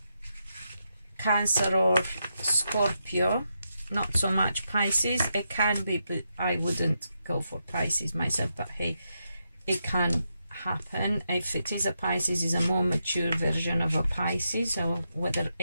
Cancer or Scorpio. Not so much Pisces. It can be, but I wouldn't go for Pisces myself. But hey, it can happen. If it is a Pisces, is a more mature version of a Pisces, so whether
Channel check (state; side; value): inverted; both; correlation -0.84